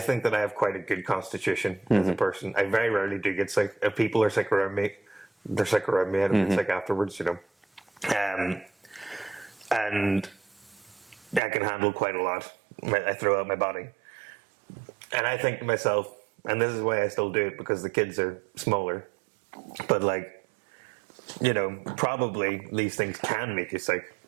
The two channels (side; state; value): left; drops out; at 11.4 s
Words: that I have quite a good constitution as a person. I very rarely do get sick. If people are sick around me, they're sick around me. I don't get sick afterwards, And I can handle quite a lot. I throw out my body. And I think to myself, and this is why I still do it, because the kids are smaller. But like, you know, probably these things can make you sick,